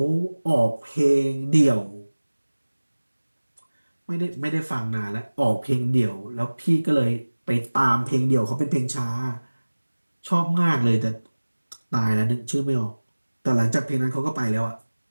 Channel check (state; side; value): inverted; both; correlation -1.00